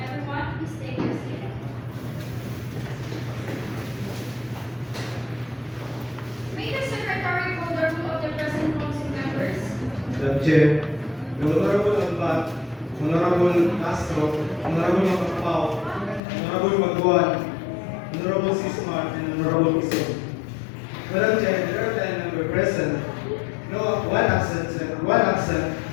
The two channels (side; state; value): right; drops out; at 16.2 s